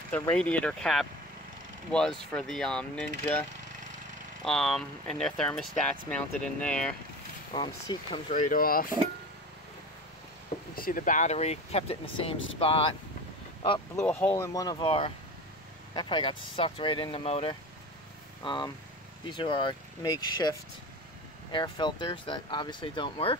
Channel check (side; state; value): both; normal; correlation 0.32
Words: radiator cap was for the Ninja, and their thermostat's mounted in there. Seat comes right off. You see the battery, kept it in the same spot. Oh, blew a hole in one of our, that probably got sucked right in the motor. These are our makeshift air filters that obviously don't work.